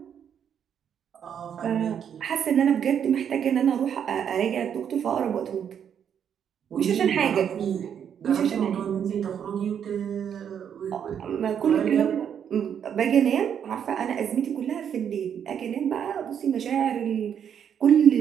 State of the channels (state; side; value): quieter; left; 8.4 dB